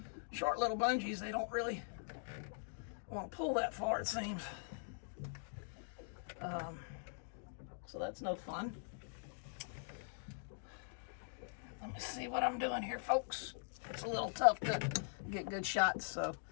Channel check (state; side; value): silent; right; digital silence